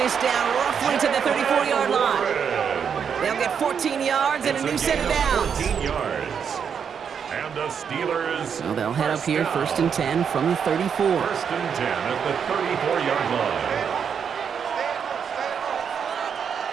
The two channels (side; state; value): left; quieter; 7.2 dB